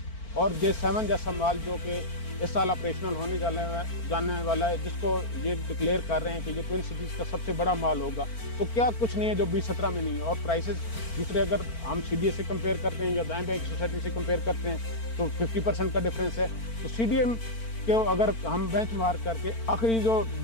और J7 जैसा माल जो कि इस साल ऑपरेशनल होने जाने वाला है, जिसको ये डिक्लेयर कर रहे हैं कि ये ट्विन सिटीज़ का सबसे बड़ा माल होगा। तो क्या कुछ नहीं है जो 2017 में नहीं है। और प्राइसेस दूसरे अगर हम CDA से कंपेयर करते हैं या दाएं बैंक सोसाइटी से कंपेयर करते हैं तो 50% का डिफरेंस है। तो CDA के अगर हम बेंच मार्क करके आखिरी जो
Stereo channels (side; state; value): right; late; 4.4 ms